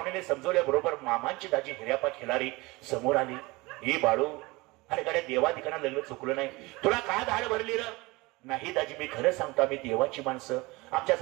समजवल्याबरोबर मामांची दाजी हिऱ्यापा खिलारी समोर आली. हे बाळू, अरे गाड्या देवाधिकांना लग्न चुकलं नाही, तुला का धाड भरली र? नाही दाजी, मी खरं सांगतो, आम्ही देवाची माणसं, आमच्या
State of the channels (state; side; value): quieter; left; 23.1 dB